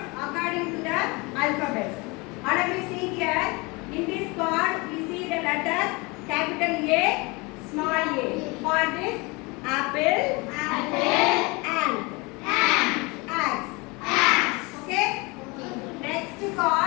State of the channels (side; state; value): right; quieter; 26.5 dB